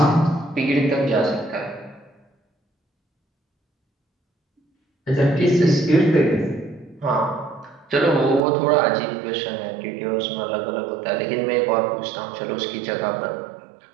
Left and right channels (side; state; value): left; drops out; at 8.4 s